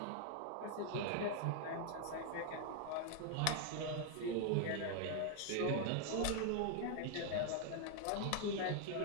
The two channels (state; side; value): different; both; correlation 0.00